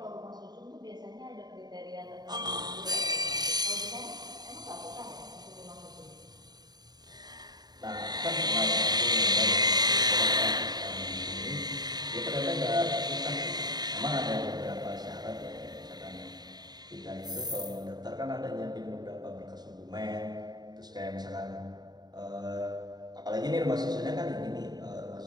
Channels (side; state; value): left; late; 0.20 ms